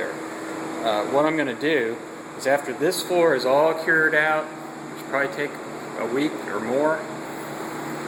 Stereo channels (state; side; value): identical; both; correlation 1.00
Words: What I'm going to do is, after this floor is all cured out, which will probably take a week or more,